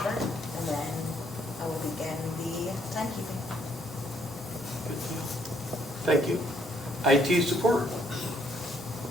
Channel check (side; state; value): both; normal; correlation 0.69